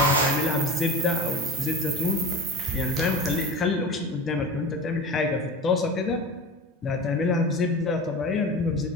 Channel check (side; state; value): both; normal; correlation 0.31